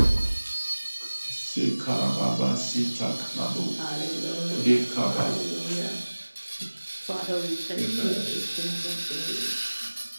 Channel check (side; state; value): both; inverted; correlation -1.00